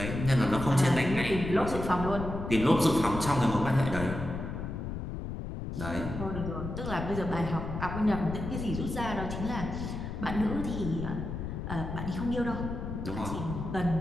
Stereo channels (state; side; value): noise; left; rumble, 5 dB below the sound